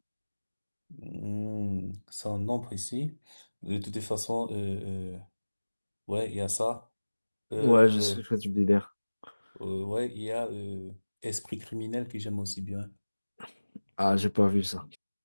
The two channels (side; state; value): both; inverted; correlation -1.00